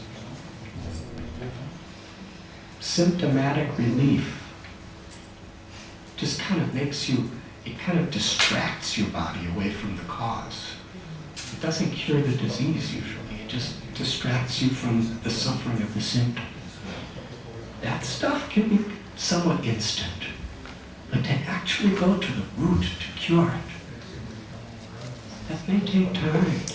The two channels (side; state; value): both; identical; correlation 1.00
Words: Symptomatic relief just kind of makes you, it kind of distracts your body away from the cause. It doesn't cure the disease usually, it just distracts you from the suffering of the symptom. That stuff can be somewhat instant, but to actually go to the root to cure it, that may take time.